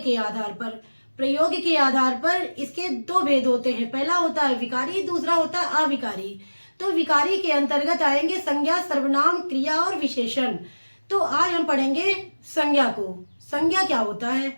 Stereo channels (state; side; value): inverted; both; correlation -1.00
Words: के आधार पर। प्रयोग के आधार पर इसके दो भेद होते हैं, पहला होता है विकारी, दूसरा होता है अविकारी। तो विकारी के अंतर्गत आएंगे संज्ञा, सर्वनाम, क्रिया और विशेषण। तो आज हम पढ़ेंगे संज्ञा को। संज्ञा क्या होता